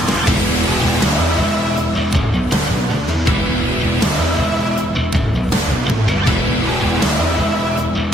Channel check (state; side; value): normal; both; correlation 0.71